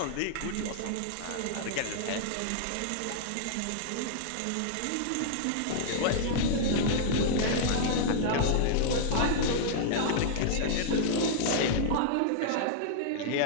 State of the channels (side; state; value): both; different; correlation -0.01